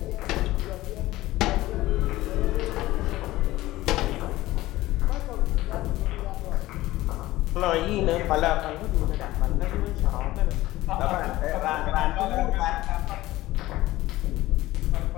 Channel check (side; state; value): right; quieter; 17.2 dB